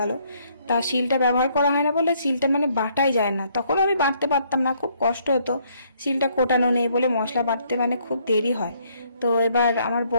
তা শিলটা ব্যবহার করা হয় না বলে শিলটা মানে বাটাই যায় না, তখন আমি বাটতে পারতাম না, খুব কষ্ট হতো, শিলটা কোটানো নেই বলে মশলা বাটতে মানে খুব দেরি হয়। তো এবার আমার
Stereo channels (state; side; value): inverted; both; correlation -0.67